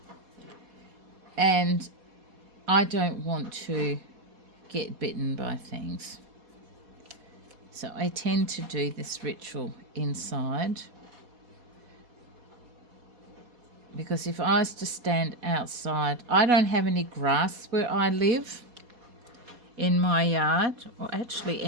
and I don't want to get bitten by things. So I tend to do this ritual inside, because if I was to stand outside, I don't have any grass where I live in my yard, or actually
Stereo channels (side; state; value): left; late; 4.2 ms